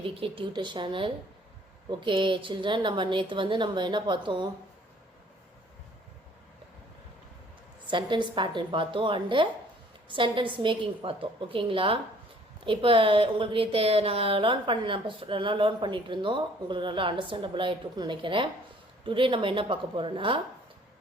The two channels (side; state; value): both; normal; correlation 0.57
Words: tutor channel. Okay children, நம்ம நேத்து நம்ம என்ன பார்த்தோம், sentence pattern பார்த்தோம் and sentence making பார்த்தோம். ஓகேங்களா? இப்போ உங்களுக்கு நேத்து நான் லேர்ன் பண்ணிட்டு இருந்தோம். உங்களுக்கு நல்லா அண்டர்ஸ்டாண்டபிள் ஆயிட்டு இருக்குன்னு நினைக்கிறேன். டுடே நம்ம என்ன பார்க்க போறோம்னா